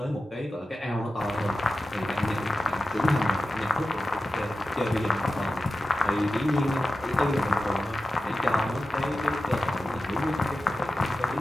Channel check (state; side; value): normal; both; correlation 0.93